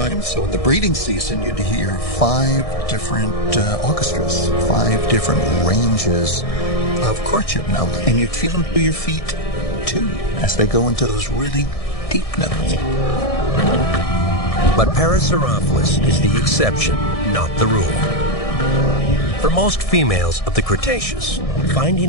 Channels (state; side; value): late; right; 1.6 ms